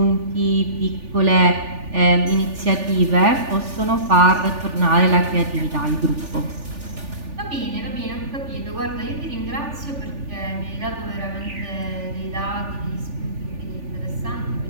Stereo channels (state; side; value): late; left; 3.4 ms